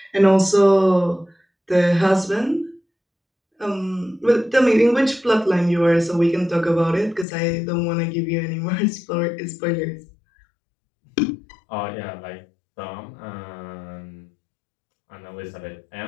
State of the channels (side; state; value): right; drops out; at 7.2 s